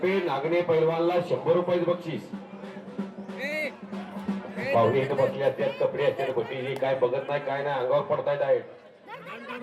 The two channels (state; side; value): identical; both; correlation 1.00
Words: नागणे पैलवानला 100 रुपये बक्षीस. पाहुणे इथं बसले असतात. कपडे असतात गोटीची. काय बघत नाही काय नाही. अंगावर पडतायत आहेत.